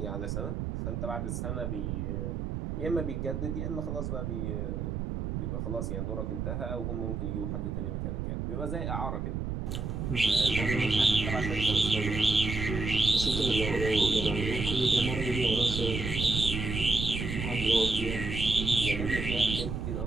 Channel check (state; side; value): noise; right; rumble, 3 dB below the sound